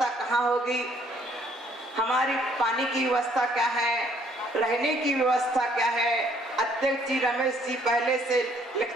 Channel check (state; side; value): normal; both; correlation 0.63